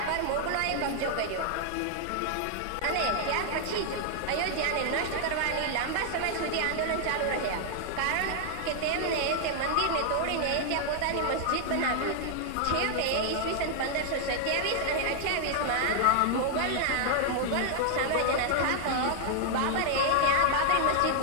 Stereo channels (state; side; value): different; both; correlation 0.00